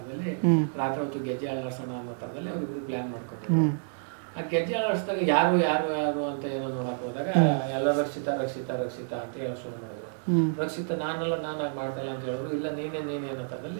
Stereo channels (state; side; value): silent; left; digital silence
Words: ರಾತ್ರಿ ಹೊತ್ತು ಗೆಜ್ಜೆ ಅಳ್ಳಾಡ್ಸೋಣ ಅನ್ನೋ ತರದಲ್ಲಿ ಅವ್ರಿಬ್ರು ಪ್ಲಾನ್ ಮಾಡ್ಕೊಂಡಿದ್ರು. ಆ ಗೆಜ್ಜೆ ಅಳ್ಳಾಡ್ಸಿದಾಗ ಯಾರು ಅಂತ ಏನೋ ನೋಡಕ್ ಹೋದಾಗ ಎಲ್ಲ ರಕ್ಷಿತಾ ಅಂತ ಹೇಳಕ್ ಶುರು ಮಾಡಿದ್ರು. ರಕ್ಷಿತಾ ನಾನಾಗಿ ಮಾಡ್ತಾ ಇಲ್ಲ ಅಂತ ಹೇಳಿದ್ರು. ಇಲ್ಲ ನೀನೇ ಅನ್ನೋ